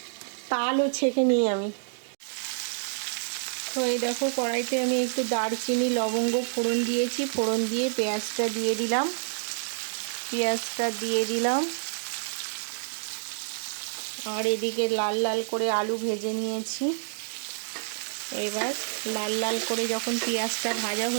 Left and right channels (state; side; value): silent; left; digital silence